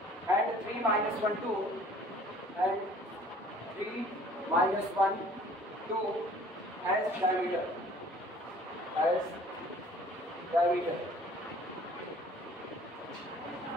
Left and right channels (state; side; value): normal; both; correlation 0.52